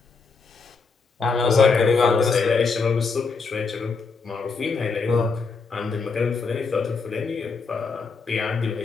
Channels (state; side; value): quieter; right; 4.7 dB